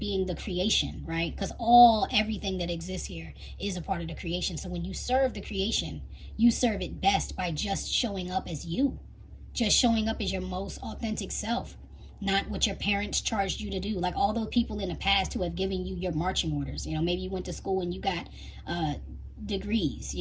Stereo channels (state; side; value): identical; both; correlation 1.00